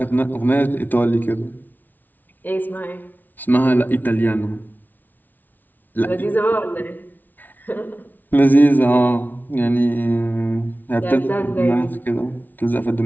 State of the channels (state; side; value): late; right; 0.084 ms